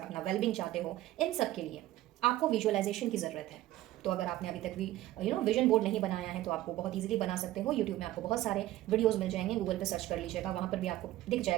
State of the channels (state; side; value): quieter; left; 15.3 dB